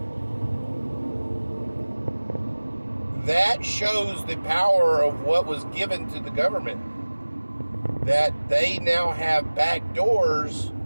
that shows the power of what was given to the government. That they now have back doors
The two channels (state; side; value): inverted; both; correlation -1.00